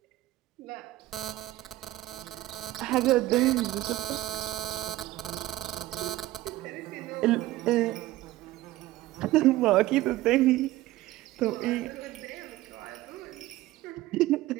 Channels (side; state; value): left; quieter; 16.5 dB